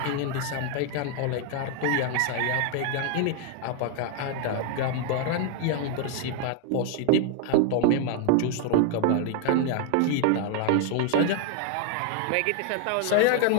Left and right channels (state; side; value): different; both; correlation 0.01